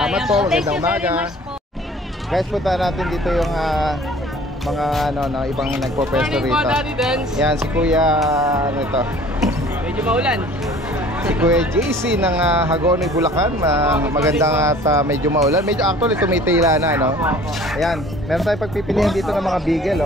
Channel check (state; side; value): normal; both; correlation 0.49